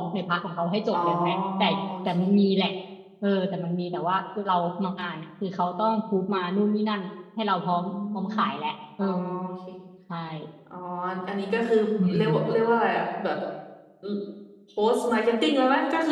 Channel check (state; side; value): identical; both; correlation 1.00